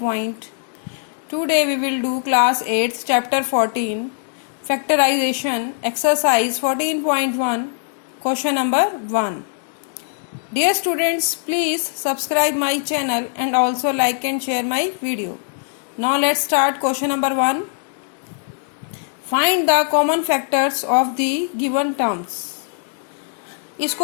Today we will do class 8 chapter 14 factorization exercise 14.1 question number 1. Dear students, please subscribe my channel and also like and share my video. Now let's start question number 1. Find the common factors of the given terms. इस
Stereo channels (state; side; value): silent; right; 61 dB below the other